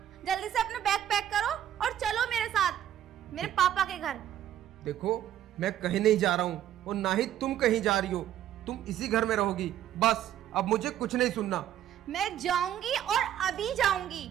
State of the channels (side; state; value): left; quieter; 11.3 dB